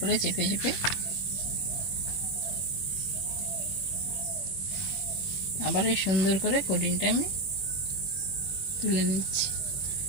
চেপে চেপে আবার এই সুন্দর করে কোটিংটা আমি তুলে নিচ্ছি।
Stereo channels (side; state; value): right; late; 21 ms